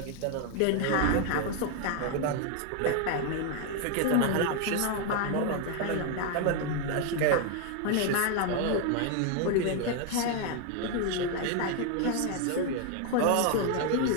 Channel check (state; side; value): different; both; correlation 0.01